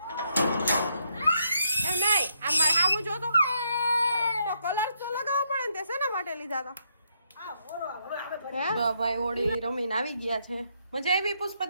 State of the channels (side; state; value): both; inverted; correlation -0.76